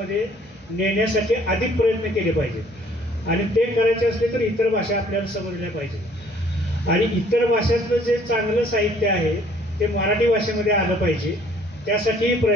नेण्यासाठी अधिक प्रयत्न केले पाहिजेत. आणि ते करायचे असले तर इतर भाषा आपल्याला समजल्या पाहिजेत आणि इतर भाषातलं जे चांगलं साहित्य आहे ते मराठी भाषेमध्ये आलं पाहिजे, त्यासाठीही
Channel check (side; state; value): both; normal; correlation 0.59